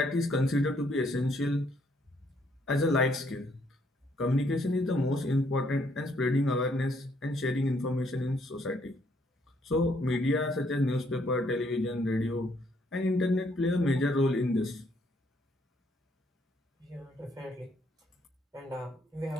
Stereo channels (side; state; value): both; normal; correlation 0.70